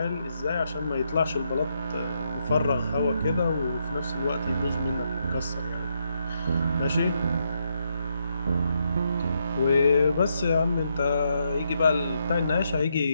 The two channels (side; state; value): both; inverted; correlation -0.79